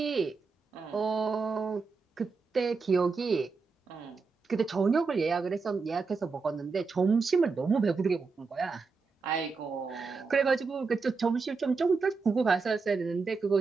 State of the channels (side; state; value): left; quieter; 4.6 dB